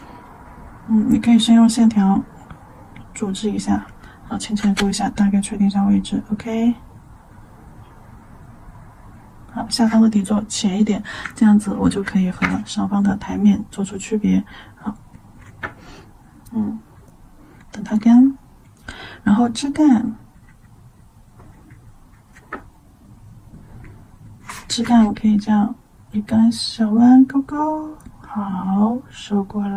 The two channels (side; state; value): both; identical; correlation 1.00